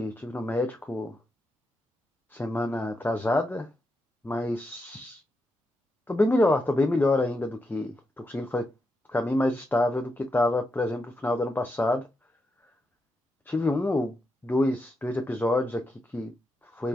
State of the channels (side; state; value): both; normal; correlation 0.85